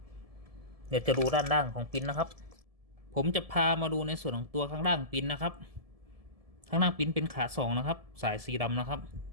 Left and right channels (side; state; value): left; late; 1.7 ms